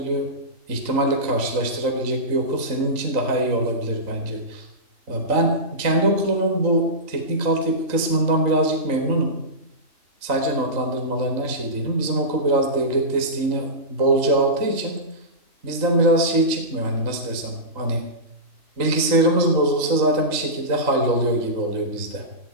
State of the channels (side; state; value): left; late; 3.8 ms